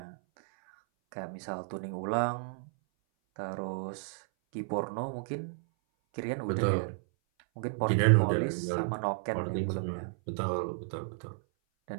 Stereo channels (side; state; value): left; silent; 56 dB below the other